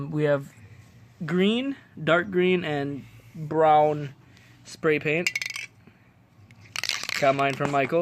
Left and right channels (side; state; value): both; identical; correlation 1.00